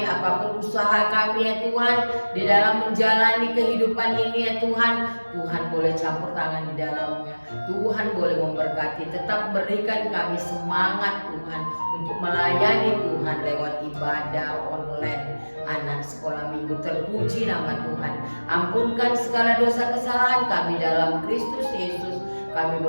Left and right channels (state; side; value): inverted; both; correlation -1.00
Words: apapun usaha kami ya Tuhan, di dalam menjalani kehidupan ini ya Tuhan, Tuhan boleh campur tangan di dalamnya. Tuhan boleh memberkati, tetap berikan kami semangat Tuhan untuk melayani Tuhan lewat ibadah online anak sekolah minggu. Terpuji nama Tuhan. Ampunkan segala dosa kesalahan kami dalam Kristus Yesus. Kami